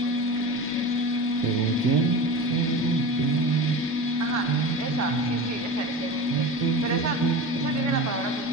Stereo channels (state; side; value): normal; both; correlation 0.30